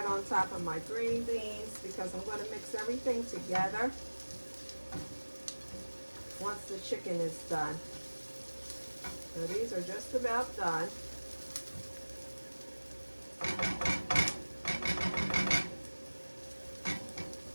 on top of my green beans because I'm going to mix everything together once the chicken is done. So these are just about done.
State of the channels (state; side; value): inverted; both; correlation -1.00